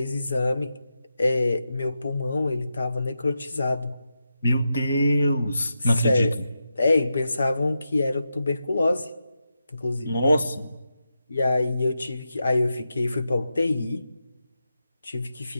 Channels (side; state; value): both; inverted; correlation -0.88